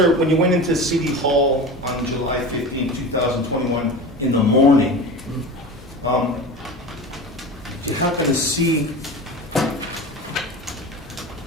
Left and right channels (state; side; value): normal; both; correlation 0.31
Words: when you went into City Hall on July 15, 2021, in the morning, did you happen to see